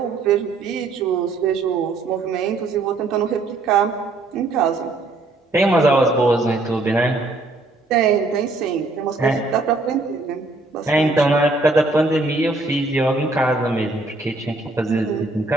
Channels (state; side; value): quieter; left; 3.2 dB